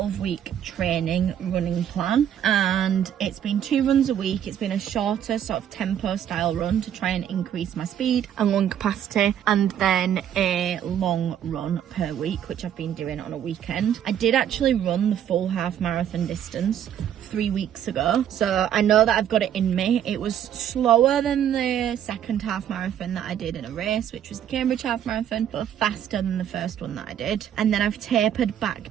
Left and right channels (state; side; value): quieter; left; 9.9 dB